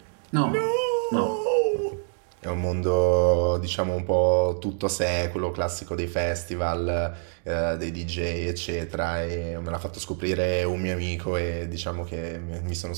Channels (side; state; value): left; silent; digital silence